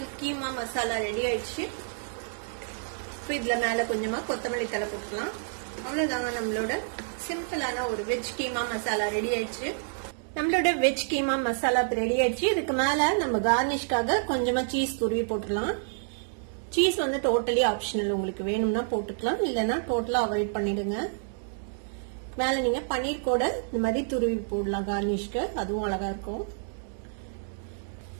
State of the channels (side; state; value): left; silent; digital silence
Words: கீமா மசாலா ரெடி ஆயிடுச்சு. இப்ப இதுல மேல கொஞ்சமா கொத்தமல்லி தழை போட்டுக்கலாம். அவ்வளவுதாங்க, நம்மளோட சிம்பிளான ஒரு வெஜ் கீமா மசாலா ரெடி ஆயிடுச்சு. நம்மளோட வெஜ் கீமா மசாலா ரெடி ஆயிடுச்சு. இதுக்கு மேல நம்ம கார்னிஷ்காக கொஞ்சமா சீஸ் துருவி போட்டுடலாம். சீஸ் வந்து டோட்டலி ஆப்ஷனல், உங்களுக்கு வேணும்னா போட்டுக்கலாம், இல்லைன்னா டோட்டலா அவாய்ட் பண்ணிடுங்க. மேல நீங்க பன்னீர் கூட இந்த மாதிரி துருவி போடலாம் கார்னிஷ்க்கு, அதுவும் அழகா இருக்கும்.